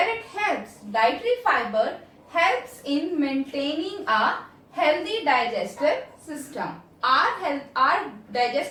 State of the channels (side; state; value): both; identical; correlation 1.00